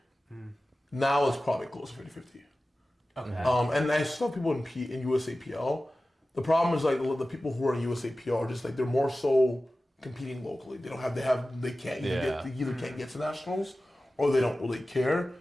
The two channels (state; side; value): normal; both; correlation 0.95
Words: Now it's probably close to 50-50. Okay. And I still have people in USAPL. The problem is like the people who are in USAPL are just like they're more so competing locally. They can't either can't get to nationals or they don't really care.